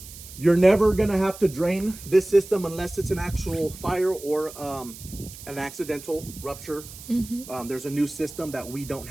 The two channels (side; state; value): right; noise; hiss, 15 dB below the sound